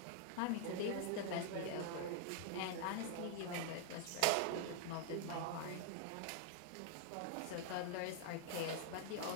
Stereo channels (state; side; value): different; both; correlation 0.00